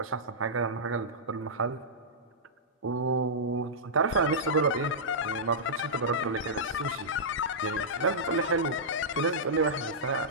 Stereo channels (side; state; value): both; normal; correlation -0.13